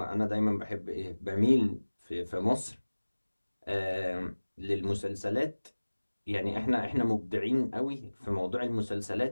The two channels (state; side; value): inverted; both; correlation -1.00